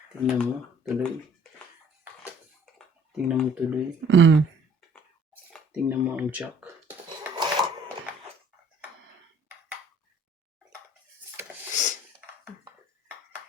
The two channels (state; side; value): normal; both; correlation 0.56